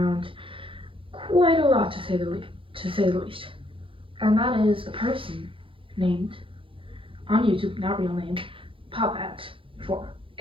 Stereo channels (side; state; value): left; late; 0.25 ms